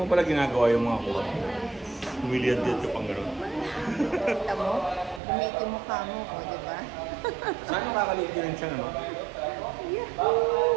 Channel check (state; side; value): drops out; left; at 5.2 s